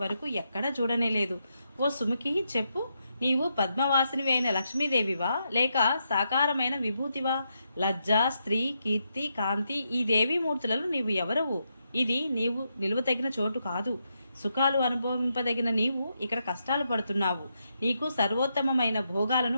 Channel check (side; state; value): both; inverted; correlation -0.82